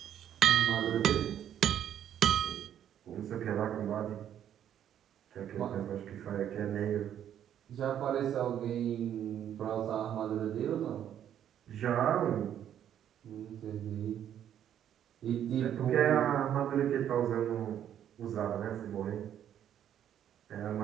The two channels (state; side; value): quieter; left; 10.1 dB